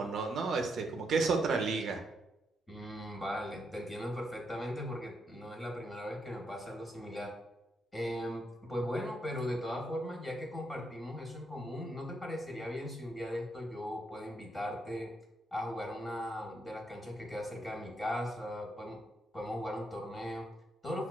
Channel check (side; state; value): both; normal; correlation 0.79